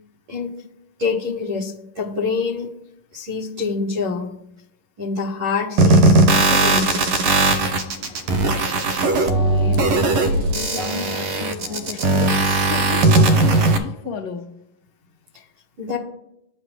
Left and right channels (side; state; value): left; late; 11 ms